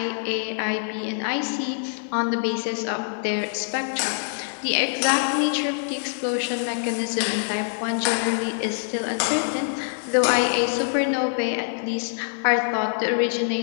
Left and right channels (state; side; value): silent; right; 62 dB below the other